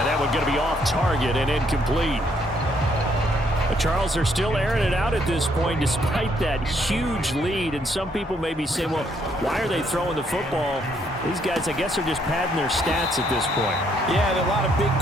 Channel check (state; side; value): normal; both; correlation 0.70